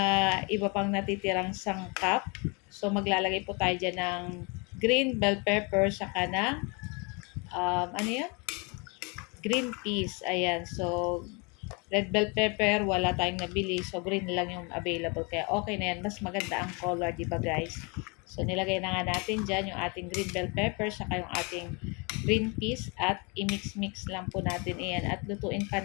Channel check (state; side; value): quieter; right; 31.1 dB